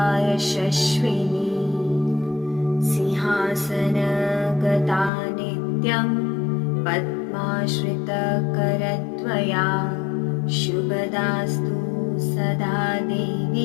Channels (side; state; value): right; drops out; at 5.1 s